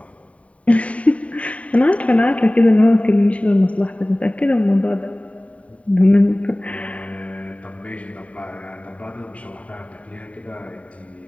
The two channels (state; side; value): late; right; 0.066 ms